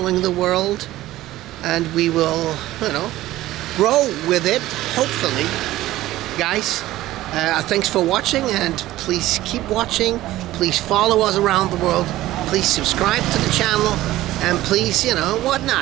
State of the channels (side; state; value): left; quieter; 15.7 dB